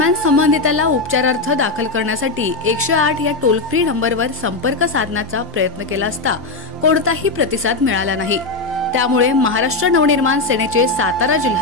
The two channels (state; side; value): quieter; right; 3.5 dB